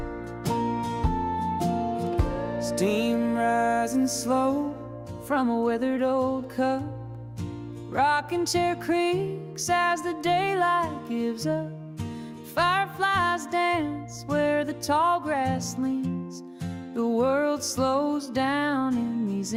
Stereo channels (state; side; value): identical; both; correlation 1.00